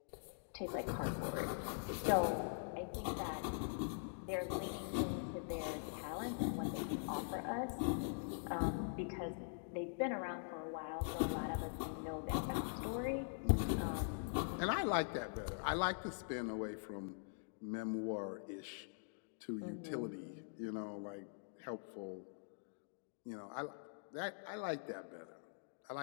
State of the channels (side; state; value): right; silent; digital silence